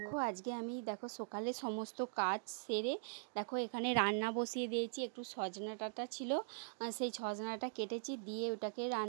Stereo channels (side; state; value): left; silent; digital silence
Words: আজকে আমি সকালে সমস্ত কাজ সেরে এখানে রান্না বসিয়ে দিয়েছি। একটু সজনা ডাঁটা ছিল, সেই সজনাটা কেটেছি, দিয়ে ওটাকে